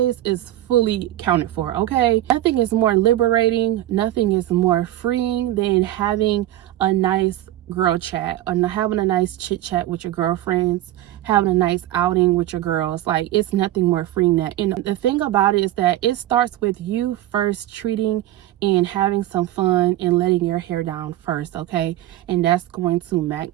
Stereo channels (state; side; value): quieter; left; 14.2 dB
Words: is fully counted for, okay? Nothing is more liberating, nothing is more freeing than having a nice girl chat, or having a nice chit chat with your girlfriends, having a nice outing with your girls. Like, it's nothing more freeing than that. And the thing about it is that it starts with you first treating and having some fun and letting your hair down first, okay? And that's going to